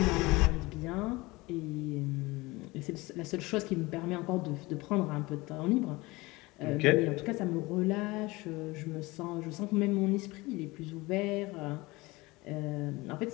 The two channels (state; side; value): quieter; right; 22.1 dB